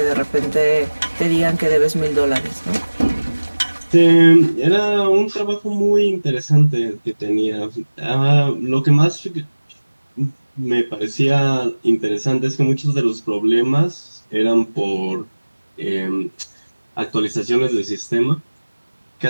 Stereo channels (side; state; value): both; inverted; correlation -1.00